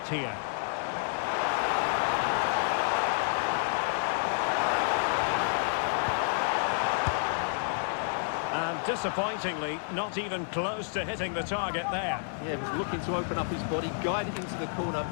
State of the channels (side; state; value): right; silent; digital silence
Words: here. And disappointingly, not even close to hitting the target there. Yeah, he was looking to open up his body, guide it into the corner,